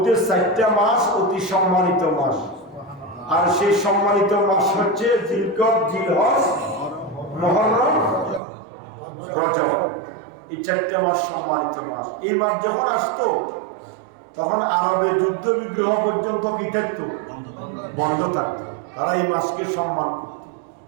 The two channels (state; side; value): drops out; left; at 8.4 s